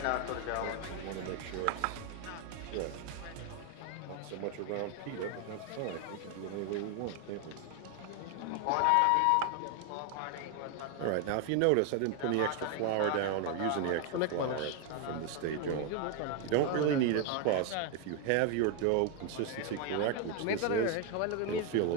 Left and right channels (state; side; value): different; both; correlation 0.01